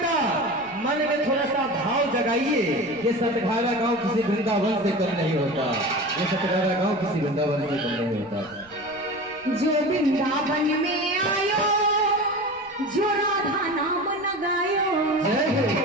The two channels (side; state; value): right; noise; rumble, 28 dB below the sound